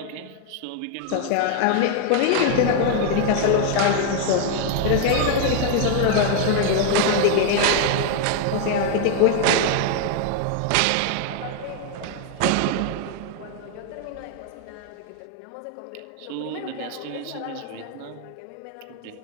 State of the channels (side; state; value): both; different; correlation 0.00